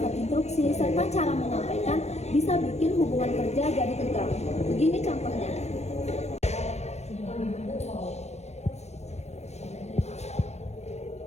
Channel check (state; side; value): late; right; 0.32 ms